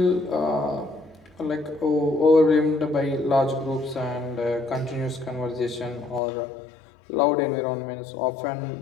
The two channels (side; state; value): right; drops out; at 6.2 s